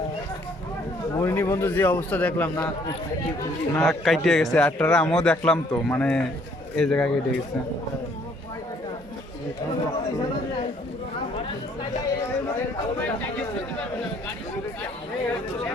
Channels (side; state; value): both; normal; correlation 0.63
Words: মরিনি বন্ধু, যে অবস্থা দেখলাম না না কাইটে গেছে। আটটারা আমিও দেখলাম তো, মানে এই জায়গায় কেটে গেছে।